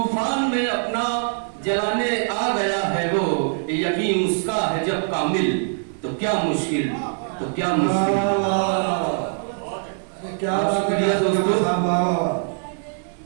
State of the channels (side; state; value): left; silent; digital silence